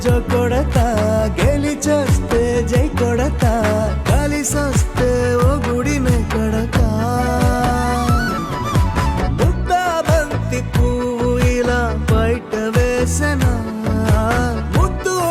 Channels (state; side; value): identical; both; correlation 1.00